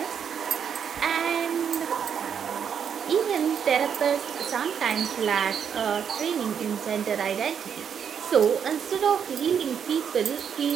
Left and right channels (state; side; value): quieter; left; 7.7 dB